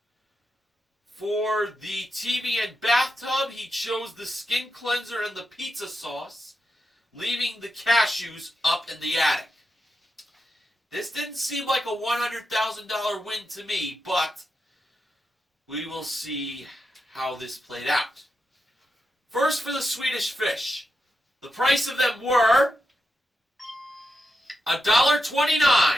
For the TV and bathtub, he chose the skin cleanser and the pizza sauce, leaving the cashews up in the attic. This didn't seem like a $100,000 win to me, but we will see how this played out. First for the Swedish Fish. The price of them were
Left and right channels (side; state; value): both; normal; correlation 0.87